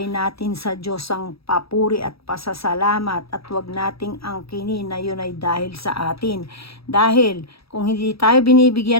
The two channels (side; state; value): right; late; 0.77 ms